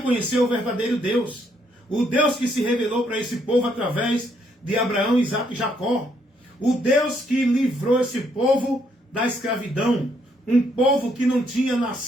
conhecer o verdadeiro Deus. O Deus que se revelou para esse povo através de Abraão, Isaac e Jacó. O Deus que livrou esse povo da escravidão. Um povo que não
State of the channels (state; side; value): normal; both; correlation 0.72